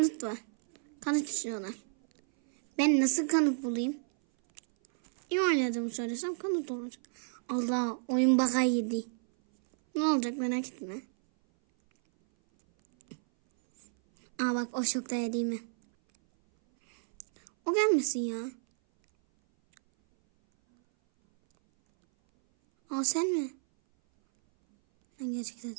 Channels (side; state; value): left; silent; 57 dB below the other